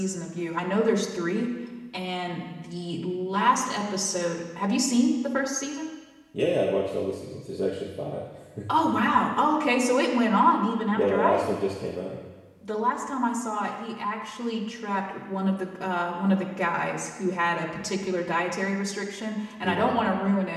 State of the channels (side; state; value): both; identical; correlation 1.00